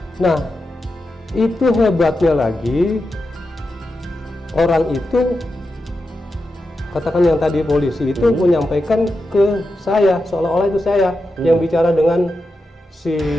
Nah, itu hebatnya lagi, orang itu, katakan yang tadi polisi itu menyampaikan ke saya, seolah-olah itu saya yang bicara dengan si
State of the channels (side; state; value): both; normal; correlation 0.89